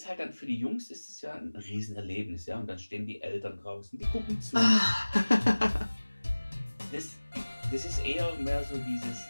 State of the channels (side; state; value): both; inverted; correlation -1.00